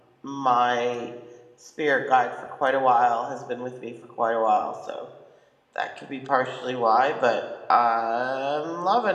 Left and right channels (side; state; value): both; identical; correlation 1.00